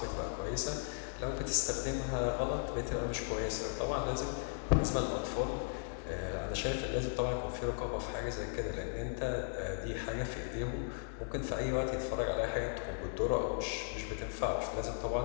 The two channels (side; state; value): right; silent; digital silence